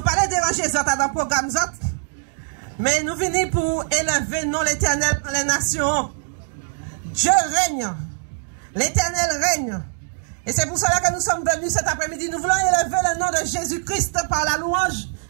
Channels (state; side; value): silent; left; digital silence